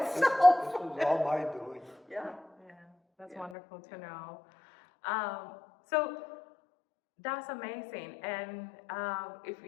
This was all my doing. Yeah. That's wonderful to know. So that's amazing. And if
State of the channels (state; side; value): drops out; right; at 3.6 s